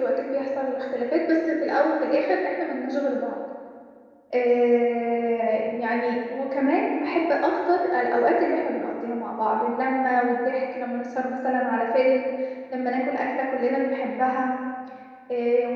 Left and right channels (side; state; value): both; identical; correlation 1.00